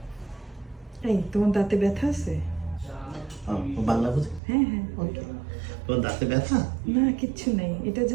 এই তোমার দাঁতে ব্যথা আছে? বাংলা বুঝি? হ্যাঁ হ্যাঁ। ওকে। তোমার দাঁতে ব্যথা? না কিচ্ছু নেই, এটা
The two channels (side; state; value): left; drops out; at 4.4 s